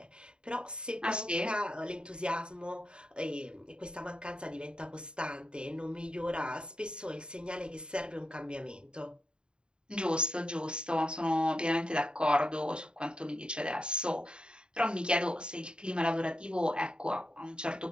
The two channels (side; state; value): left; late; 0.051 ms